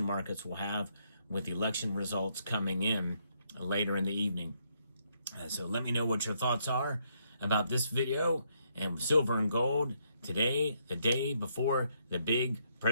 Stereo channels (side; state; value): both; inverted; correlation -0.74